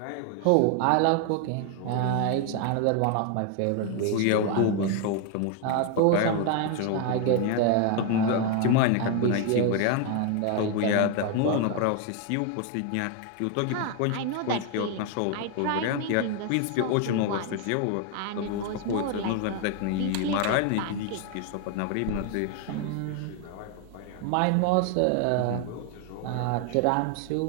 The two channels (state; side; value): different; both; correlation 0.01